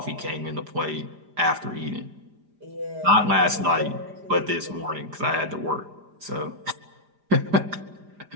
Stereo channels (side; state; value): left; late; 4.9 ms